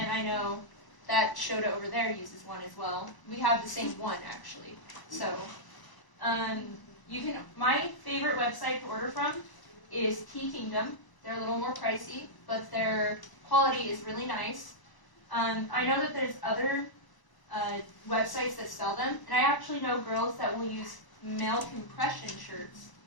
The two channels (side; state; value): right; late; 1.0 ms